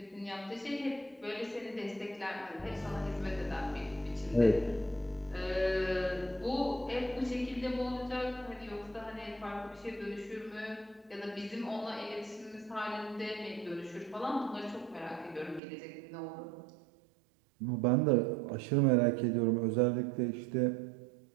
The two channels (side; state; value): left; drops out; at 15.6 s